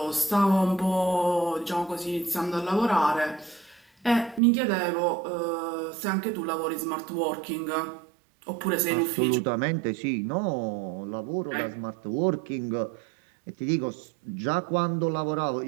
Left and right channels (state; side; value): drops out; left; at 4.4 s